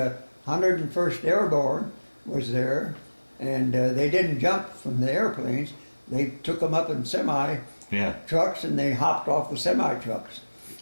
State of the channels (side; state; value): both; inverted; correlation -1.00